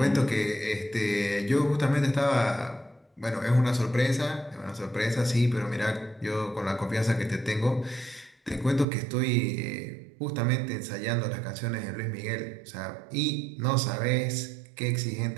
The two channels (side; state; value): left; drops out; at 8.8 s